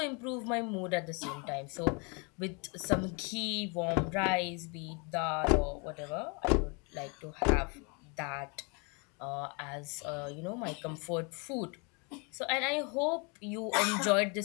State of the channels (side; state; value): right; quieter; 32.9 dB